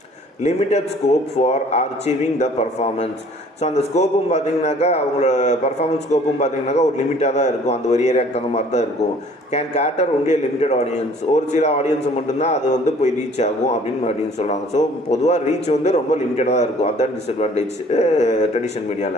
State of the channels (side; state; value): both; normal; correlation 0.54